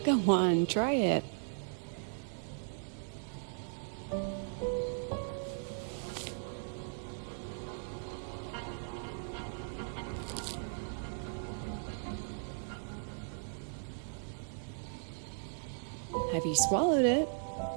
Go on, try it. Have you swallowed it?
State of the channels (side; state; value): left; silent; digital silence